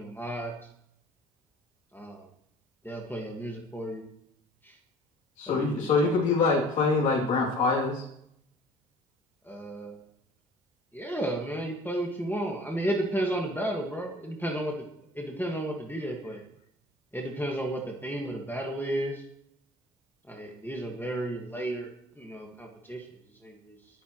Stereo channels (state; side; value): normal; both; correlation 0.49